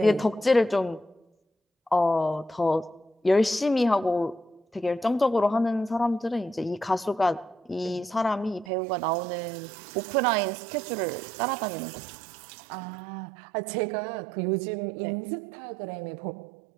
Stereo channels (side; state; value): left; drops out; at 8.7 s